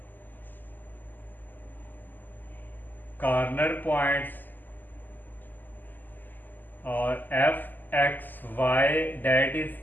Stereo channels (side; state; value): right; late; 0.087 ms